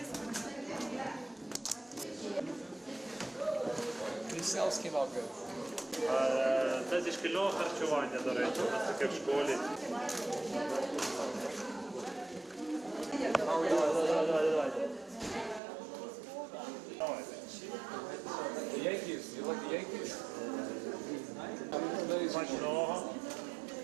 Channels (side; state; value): left; drops out; at 15.6 s